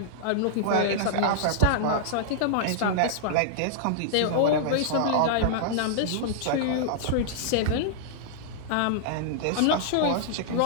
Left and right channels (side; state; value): both; different; correlation -0.01